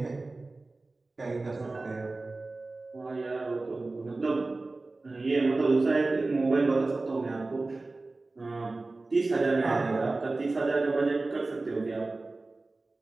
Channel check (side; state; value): left; quieter; 3.3 dB